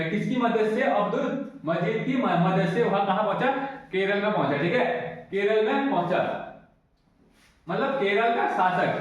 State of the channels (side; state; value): both; identical; correlation 1.00